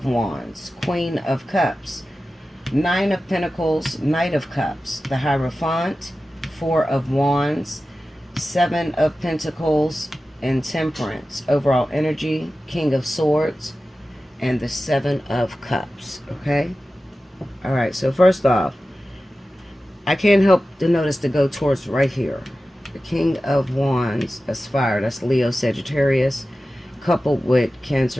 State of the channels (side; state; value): both; normal; correlation 0.94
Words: Wands, Queen of Cups, Nine of Pentacles, Knight of Cups, the Hierophant, Four of Wands, Seven of Pentacles, and Temperance. Overall energy, King of Swords, and the Seven of Cups. Okay? All right, so first off, I can't help to notice to go towards right here. The King of Wands, that's fire. That's Leo, Sagittarius, coupled with